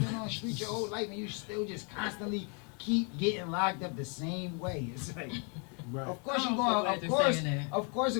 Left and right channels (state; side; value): quieter; right; 37.5 dB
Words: on the street your whole life and you still just constantly keep getting locked up the same way. It's like, Right. of course I'm you so going, glad of you're course, saying that. of course